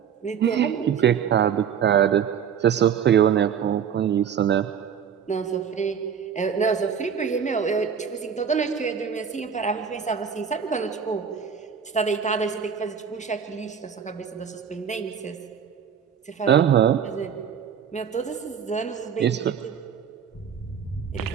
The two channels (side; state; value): left; quieter; 7.7 dB